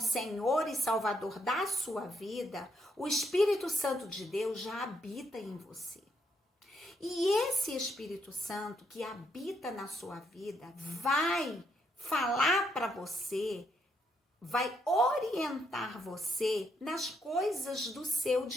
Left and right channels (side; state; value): both; normal; correlation 0.75